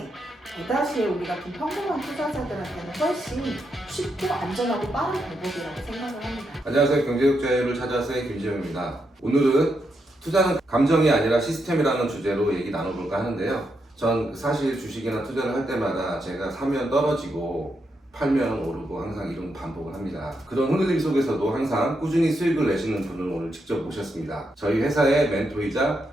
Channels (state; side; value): normal; both; correlation 0.82